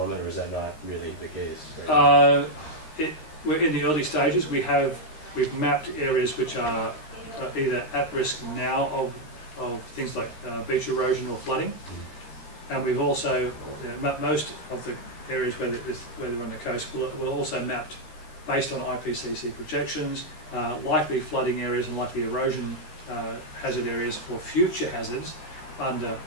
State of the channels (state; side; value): late; right; 13 ms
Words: or is that not really the case? Right? We're in the early stages. We've mapped areas which are either at risk now of things like beach erosion or flooding, and we've also most of the areas where they're on the coast were also mapped based on IPCC projections, likely flooding areas and likely erosion hazard areas for future hazards under